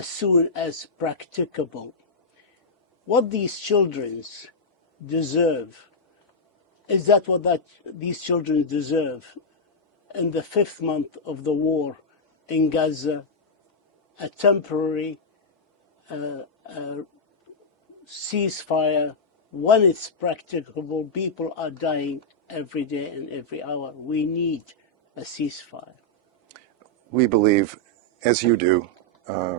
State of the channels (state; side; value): normal; both; correlation -0.07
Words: soon as practicable. What these children deserve, is that what these children deserve in the 5th month of the war in Gaza, a temporary ceasefire when it's practicable? People are dying every day and every hour. We need a ceasefire. We believe, as you do,